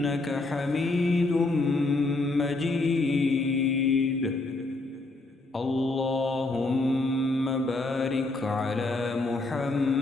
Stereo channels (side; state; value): right; quieter; 3.1 dB